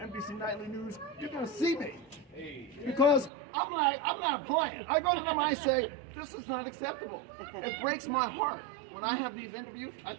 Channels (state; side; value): drops out; left; at 3.3 s